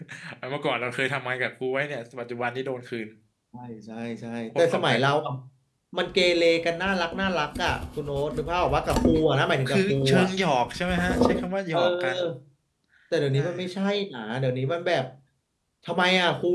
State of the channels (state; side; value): identical; both; correlation 1.00